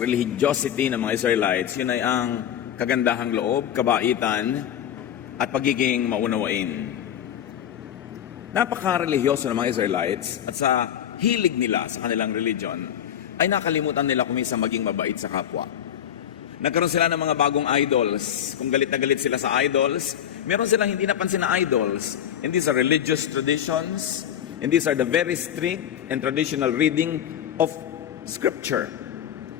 religiosity ng mga Israelites, yun ay ang kagandahang loob, kabaitan, at pagiging maunawain. Napaka-religyoso ng mga Israelites at sa hilig nila sa kanilang religion ay nakalimutan nila kumisa maging mabait sa kapwa. Nagkaroon sila ng mga bagong idols. Kung galit na galit sila sa idols, meron silang hindi napansin na idols. And these are religious traditions, and these are the very strict and traditional reading of Scripture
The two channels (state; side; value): quieter; right; 9.9 dB